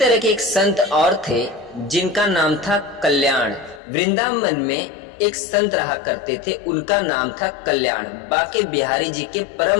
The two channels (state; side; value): drops out; right; at 3.8 s